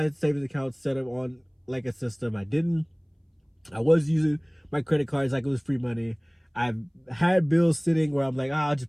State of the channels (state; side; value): identical; both; correlation 1.00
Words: savings account set up on like a system. I was using my credit cards like it was free money. I've had bills sitting where I'm like, I'll